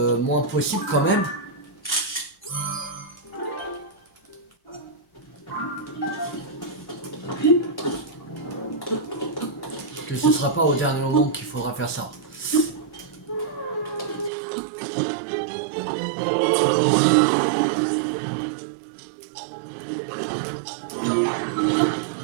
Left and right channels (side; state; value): left; drops out; at 14.3 s